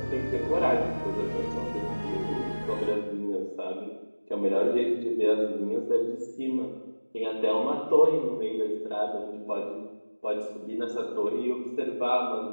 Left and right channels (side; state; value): both; inverted; correlation -1.00